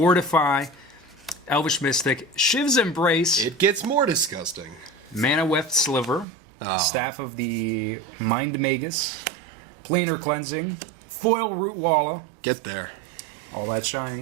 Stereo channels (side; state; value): left; drops out; at 6.2 s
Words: Elvish Mystic, Shiv's Embrace. It gets more disgusting. Mana Weft Sliver, Staff of the Mind Magus, Planar Cleansing, Foil Root Walla. Get there. All that